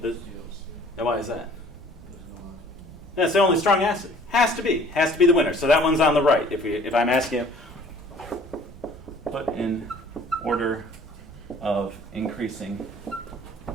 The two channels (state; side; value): normal; both; correlation 0.53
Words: And why is that? That's the only strong acid. Has to be the winner. So that one's on the right. If I'm asking you, put in order of increasing